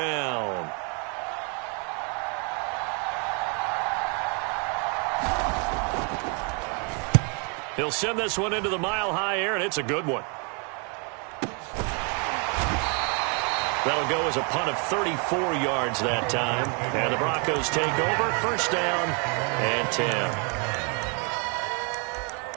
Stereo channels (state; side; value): quieter; left; 36.3 dB